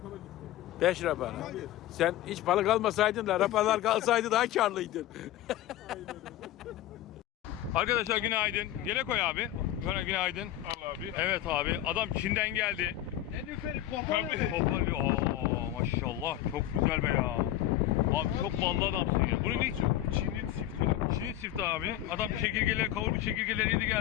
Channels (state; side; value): quieter; right; 13.2 dB